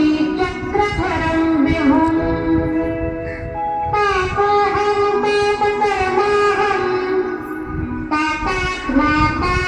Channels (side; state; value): both; identical; correlation 1.00